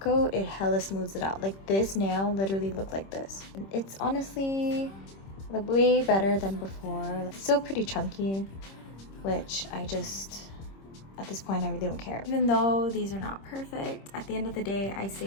it hella smooths it out. Like this nail literally looked like this. It's honestly like way better than before. It's still pretty chunky, which I just, at this point, I really don't care. Even though these are not perfect, at the end of the day, I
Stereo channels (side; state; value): right; late; 26 ms